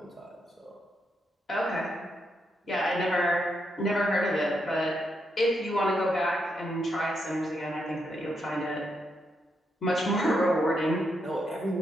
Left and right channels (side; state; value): both; normal; correlation 0.81